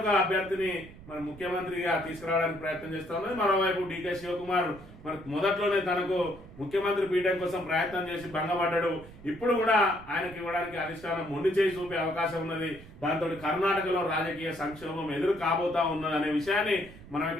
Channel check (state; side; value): noise; right; rumble, 18 dB below the sound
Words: అభ్యర్థిని మరి ముఖ్యమంత్రిగా తీసుకురావడానికి ప్రయత్నం చేస్తా ఉన్నది. మరోవైపు డీకే శివకుమార్ మరి మొదట్లోనే తనకు ముఖ్యమంత్రి పీఠం కోసం ప్రయత్నం చేసి భంగపడ్డాడు. ఇప్పుడు కూడా ఆయనకి ఇవ్వడానికి అధిష్టానం మొండి చేసి చూపే అవకాశం ఉన్నది. దాంతో కర్ణాటకలో రాజకీయ సంక్షోభం ఎదురు కాబోతా ఉన్నది అనే విషయాన్ని మనం